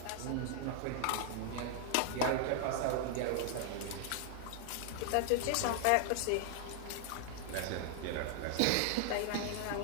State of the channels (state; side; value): different; both; correlation 0.00